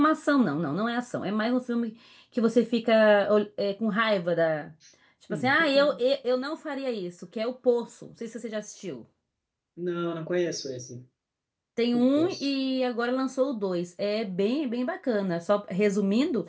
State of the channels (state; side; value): identical; both; correlation 1.00